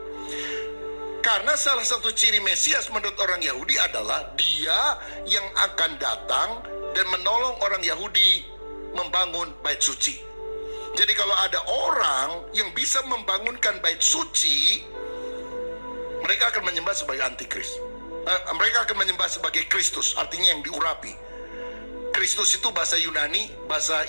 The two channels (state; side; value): inverted; both; correlation -1.00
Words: Karena salah satu ciri Mesias menurut orang Yahudi adalah dia yang akan datang dan menolong orang Yahudi membangun bait suci. Jadi kalau ada orang yang bisa membangunkan bait suci, mereka akan menyembah sebagai antikris. Mereka akan menyembah sebagai Kristus, artinya yang diurapi. Kristus itu bahasa Yunani, bahasa